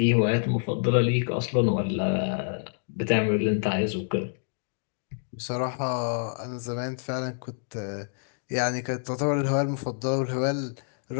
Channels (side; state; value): right; silent; digital silence